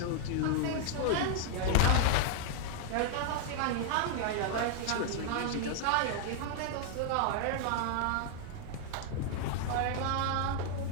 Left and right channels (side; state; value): both; different; correlation 0.00